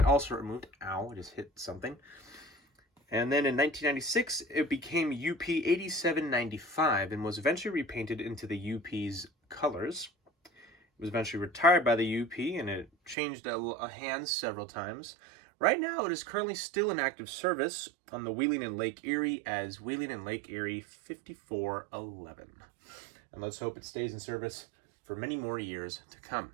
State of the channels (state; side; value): drops out; left; at 13.2 s